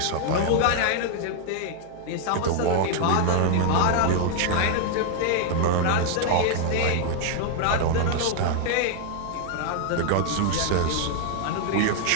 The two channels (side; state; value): both; different; correlation 0.00